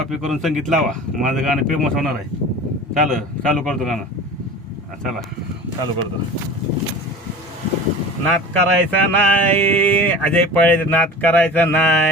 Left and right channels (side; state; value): both; normal; correlation 0.36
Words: करून संगीत लावा, माझं गाणं फेमस होणार आहे. चालू करतो गाणं. चला चालू करतो. नाद करायचा नाही अजय पाळे, नाद करायचा